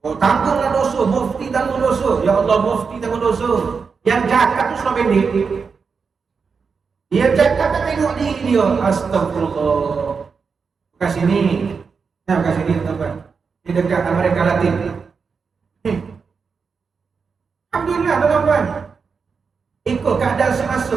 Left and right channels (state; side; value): quieter; left; 5.4 dB